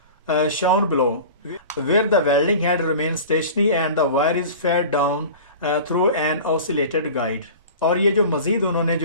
shown below, where the welding head remains stationary and the wire is fed down through an oscillated guide। और ये जो मज़ीद उन्होंने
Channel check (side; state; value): both; inverted; correlation -0.38